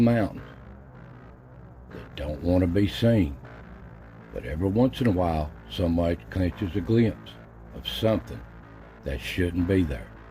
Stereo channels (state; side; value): identical; both; correlation 1.00